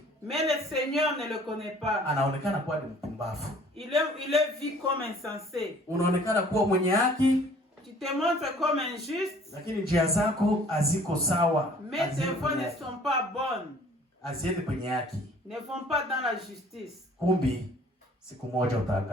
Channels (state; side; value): normal; both; correlation 0.54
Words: mais le Seigneur ne le connaît pas. Anaonekana kuwa ni mpumbavu. Il est vu comme insensé. Unaonekana kuwa mwenye haki, Tu te montres comme injuste, lakini njia zako haziko sawa. mais tes voies ne sont pas bonnes, Haziende kwenye haki. ne vont pas dans la justice. Kumbi siku moja